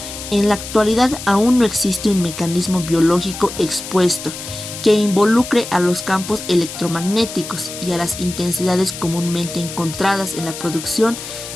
en la actualidad aún no existe un mecanismo biológico expuesto que involucre a los campos electromagnéticos y a las intensidades comúnmente encontradas en la producción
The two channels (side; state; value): left; noise; hiss, 10 dB below the sound